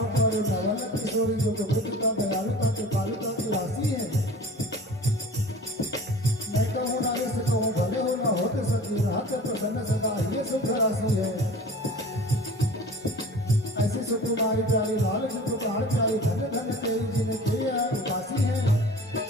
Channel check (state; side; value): normal; both; correlation 0.41